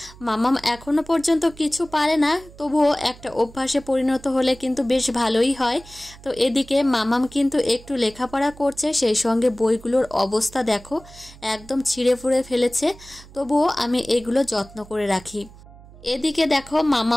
মাম্মাম এখনো পর্যন্ত কিছু পারে না, তবুও একটা অভ্যাসে পরিণত হলে কিন্তু বেশ ভালোই হয়। তো এদিকে মাম্মাম কিন্তু একটু লেখাপড়া করছে, সেই সঙ্গে বইগুলোর অবস্থা দেখো, একদম ছিঁড়ে ফুঁড়ে ফেলেছে, তবুও আমি এগুলো যত্ন করে রাখি। এদিকে দেখো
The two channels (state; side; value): noise; right; hum, 21 dB below the sound